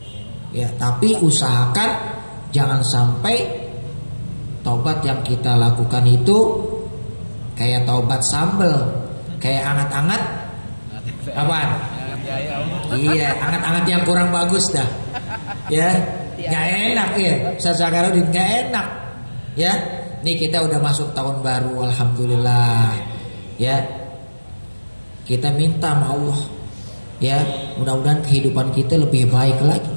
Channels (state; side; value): inverted; both; correlation -1.00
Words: Ya, tapi usahakan jangan sampai taubat yang kita lakukan itu kayak taubat sambel, kayak anget-anget apaan? Iya, anget-anget yang kurang bagus dah. Ya, enggak enak ya. Ustaz Zakarudin enggak enak. Ya. Nih kita udah masuk tahun baru, alhamdulillah. Ya. Kita minta sama Allah, ya mudah-mudahan kehidupan kita lebih baik lagi,